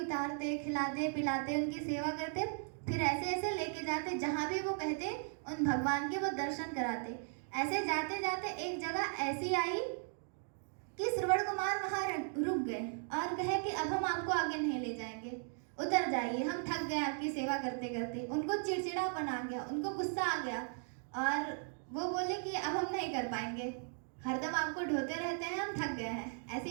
उतारते, खिलाते पिलाते, उनकी सेवा करते, फिर ऐसे ऐसे लेके जाते जहाँ भी वो कहते उन भगवान के वो दर्शन कराते। ऐसे जाते जाते एक जगह ऐसी आई कि श्रवण कुमार वहाँ रुक गए और कहे कि अब हम आपको आगे नहीं ले जाएंगे, उतर जाइए, हम थक गए आपकी सेवा करते करते। उनको चिड़चिड़ापन आ गया, उनको गुस्सा आ गया और वो बोले कि अब हम नहीं कर पाएंगे, हरदम आपको ढोते रहते हैं, हम थक गए हैं।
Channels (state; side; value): silent; left; 53 dB below the other